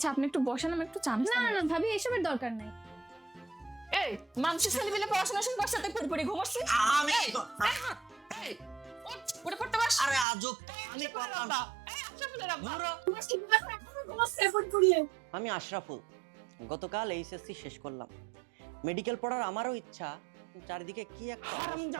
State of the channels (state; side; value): drops out; left; at 10.2 s